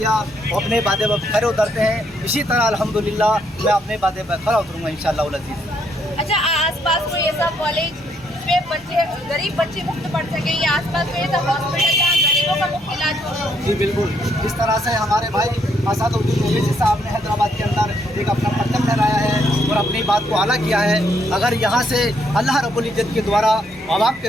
अपने वादे पर खरे उतरते हैं। इसी तरह अल्हम्दुलिल्लाह मैं अपने वादे पर खरा उतरूँगा इंशाअल्लाह अज़ीज़। अच्छा, आसपास कोई ऐसा कॉलेज जिसमें बच्चे गरीब बच्चे मुफ्त पढ़ सके, या आसपास कोई ऐसा हॉस्पिटल जहाँ गरीबों का मुफ्त इलाज हो? जी बिल्कुल, जिस तरह से हमारे भाई असदुद्दीन ओवैसी साहब ने हैदराबाद के अंदर एक अपना पत्तन लहराया है और अपनी बात को आला किया है। अगर यहाँ से अल्लाह रब्बुल इज्जत के द्वारा, आवाम के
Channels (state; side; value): normal; both; correlation 0.72